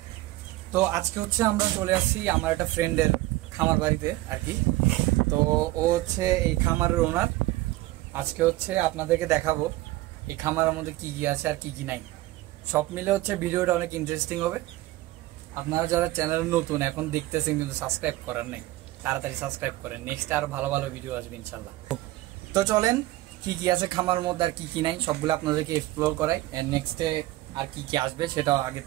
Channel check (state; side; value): quieter; left; 17.9 dB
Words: তো আজকে হচ্ছে আমরা চলে আসছি আমার একটা ফ্রেন্ডের খামার বাড়িতে আর কি। তো ও হচ্ছে এই খামারের ওনার। আজকে হচ্ছে আপনাদেরকে দেখাবো এই খামারের মধ্যে কি কি আছে আর কি কি নাই। সব মিলে হচ্ছে ভিডিওটা অনেক ইন্টারেস্টিং হবে। আপনারা যারা চ্যানেলে নতুন এখন দেখতেছেন কিন্তু সাবস্ক্রাইব করেন নাই, তাড়াতাড়ি সাবস্ক্রাইব করেন। নেক্সট আরো ভালো ভালো ভিডিও আসবে ইনশাল্লাহ। তো চলেন কি কি আছে খামার মধ্যে আর কি কি নাই সবগুলো আপনাদেরকে এক্সপ্লোর করাই। এন্ড নেক্সটে আর কি কি আসবে সেটাও আগে